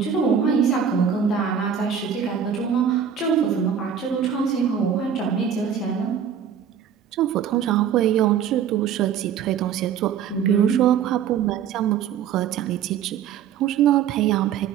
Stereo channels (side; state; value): left; quieter; 8.1 dB